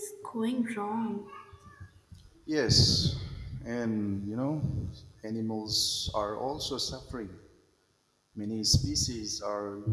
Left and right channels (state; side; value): identical; both; correlation 1.00